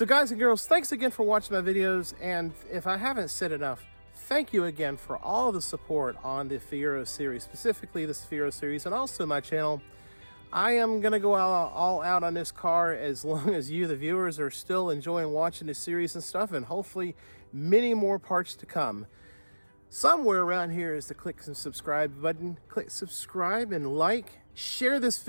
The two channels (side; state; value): both; inverted; correlation -1.00